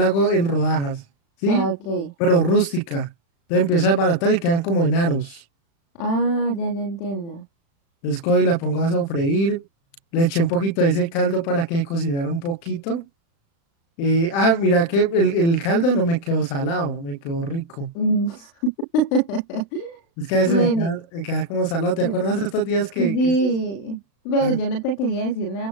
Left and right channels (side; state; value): right; late; 36 ms